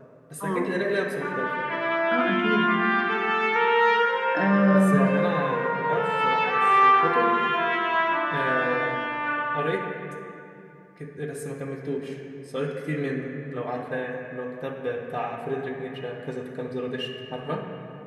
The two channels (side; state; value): both; identical; correlation 1.00